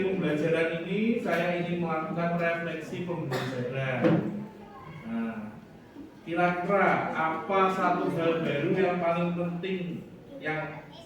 pembelajaran ini, saya ingin melakukan refleksi pembelajaran. Nah, kira-kira apa satu hal baru yang paling penting yang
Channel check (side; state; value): both; identical; correlation 1.00